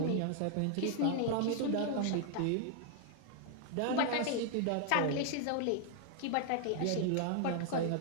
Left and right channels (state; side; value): different; both; correlation 0.00